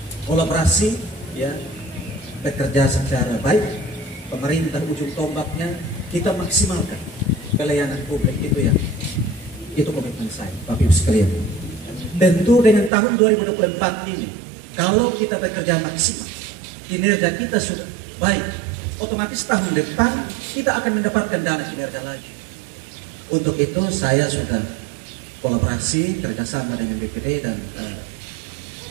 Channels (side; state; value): left; drops out; at 12.9 s